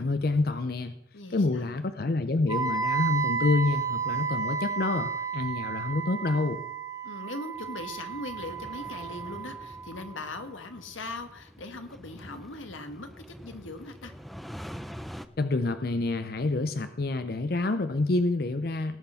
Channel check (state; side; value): normal; both; correlation 0.52